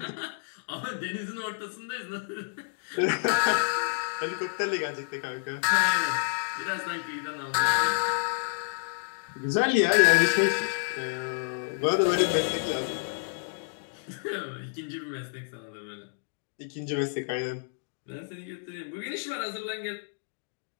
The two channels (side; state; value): right; silent; digital silence